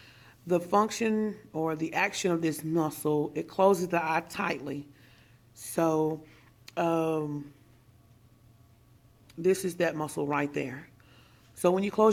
The function or the action of this muscle, it closes the eye tightly. So this is that muscle right there. So when you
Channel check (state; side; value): identical; both; correlation 1.00